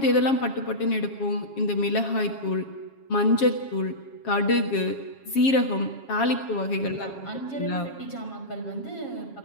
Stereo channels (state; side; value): late; right; 7.3 ms